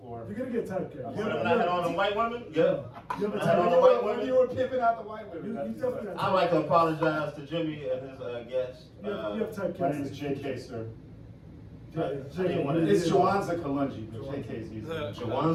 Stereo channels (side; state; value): both; identical; correlation 1.00